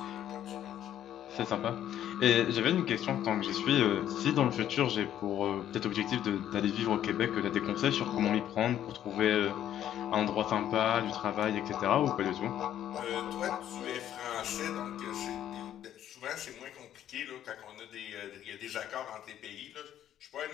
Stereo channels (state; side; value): quieter; right; 11.1 dB